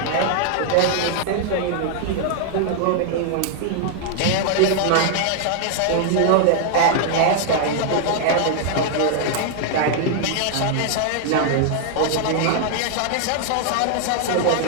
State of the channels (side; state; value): both; different; correlation 0.00